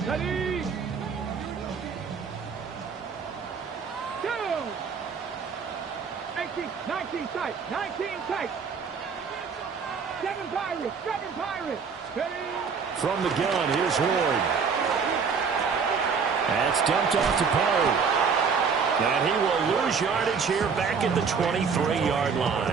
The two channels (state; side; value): quieter; left; 5.8 dB